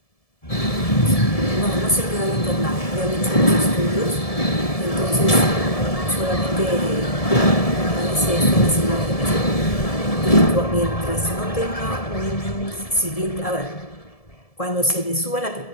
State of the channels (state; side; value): late; right; 1.7 ms